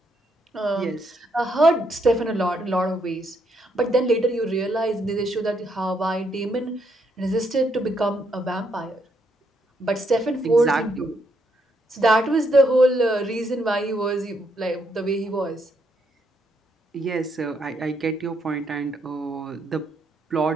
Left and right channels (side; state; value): both; normal; correlation 0.75